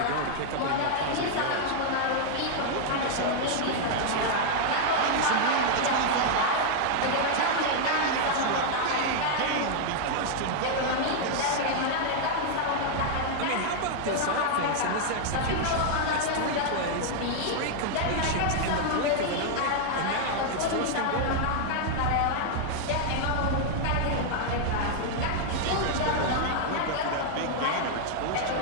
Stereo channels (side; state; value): both; different; correlation 0.00